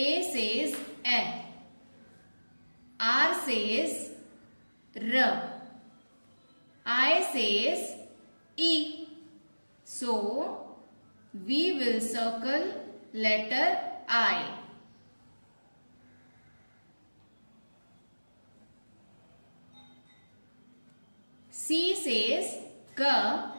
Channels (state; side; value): inverted; both; correlation -1.00